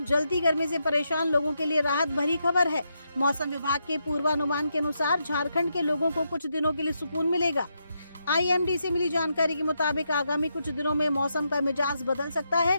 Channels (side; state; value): both; inverted; correlation -0.82